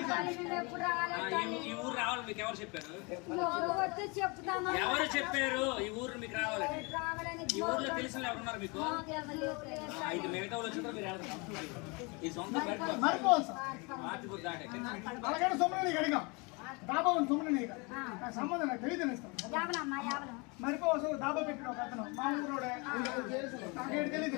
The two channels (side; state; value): right; quieter; 29.4 dB